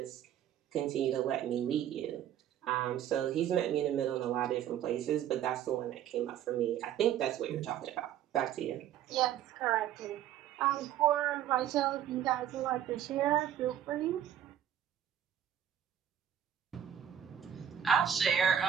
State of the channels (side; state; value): left; quieter; 10.3 dB